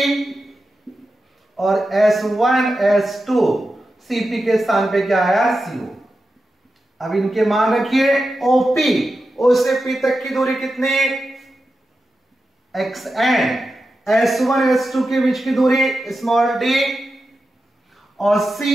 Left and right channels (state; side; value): normal; both; correlation 0.91